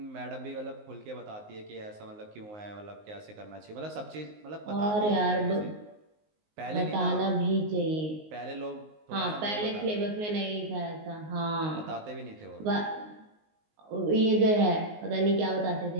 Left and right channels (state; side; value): late; left; 19 ms